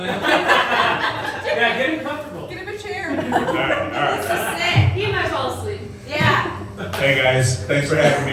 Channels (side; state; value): both; identical; correlation 1.00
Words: Yeah, get him comfortable. Get him a chair. All right. He might fall asleep. Yeah. Hey guys, thanks for having